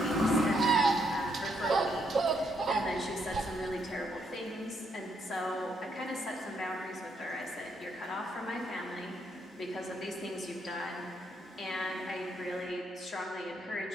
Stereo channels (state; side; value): normal; both; correlation 0.75